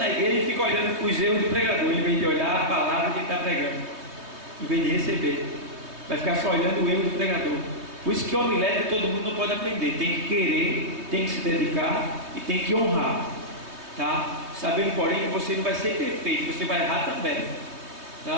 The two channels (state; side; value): late; left; 3.2 ms